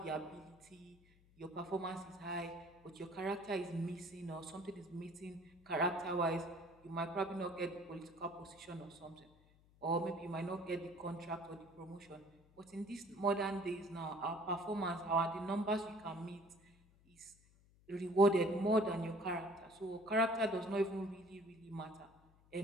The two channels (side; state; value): left; noise; hum, 28 dB below the sound